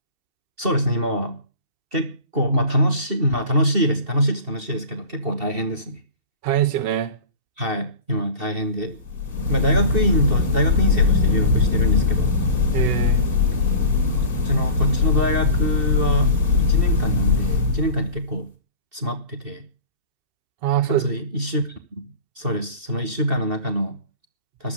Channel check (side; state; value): left; late; 2.7 ms